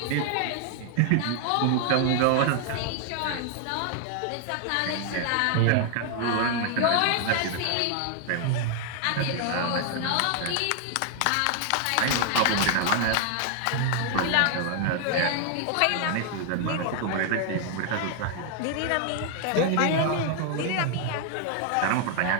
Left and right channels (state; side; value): different; both; correlation 0.00